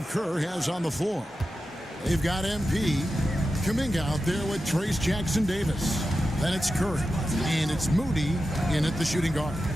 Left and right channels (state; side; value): normal; both; correlation 0.91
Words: Kerr has on the floor. They've got MP, Kuminga out there with Trace Jackson-Davis. Then it's Curry, and it's Moody in at the shooting guard.